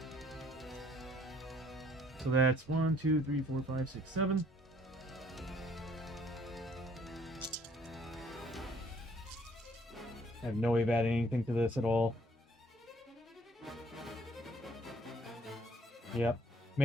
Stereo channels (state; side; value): normal; both; correlation 0.61